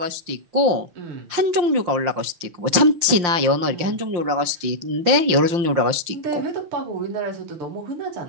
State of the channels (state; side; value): late; left; 5.7 ms